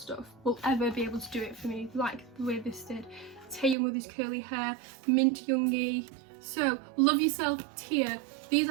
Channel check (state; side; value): drops out; left; at 3.8 s